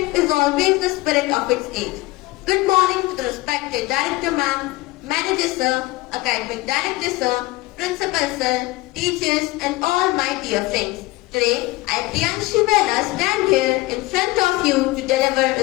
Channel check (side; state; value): right; quieter; 20.7 dB